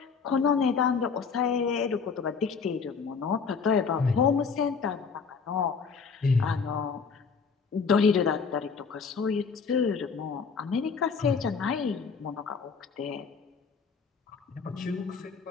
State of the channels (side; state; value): right; quieter; 5.5 dB